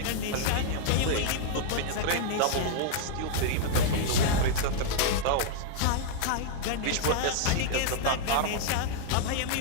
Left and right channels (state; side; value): different; both; correlation -0.01